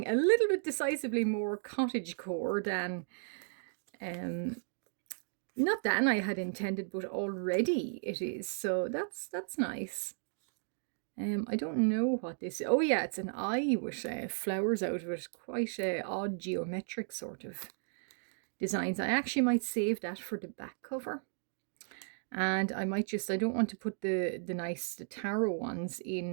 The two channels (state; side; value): silent; left; digital silence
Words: a little bit decisively more cottagecore than, not than I had intended, but already it is. So that's nice. I don't know what this is. Oh yeah, it's an eye with flowers out of it. Quite odd geometric sort of designs. I actually might save that for the back cover. And I might just, I don't want to put the tarot ones